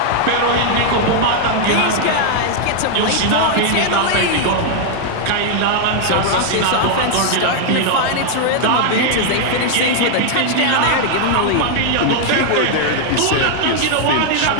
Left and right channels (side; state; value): both; different; correlation 0.00